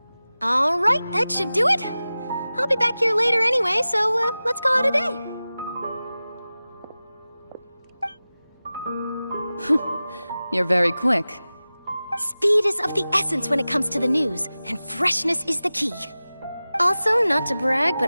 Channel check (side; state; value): both; inverted; correlation -0.96